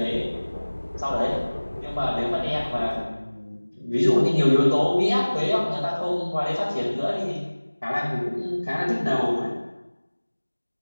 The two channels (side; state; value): both; inverted; correlation -1.00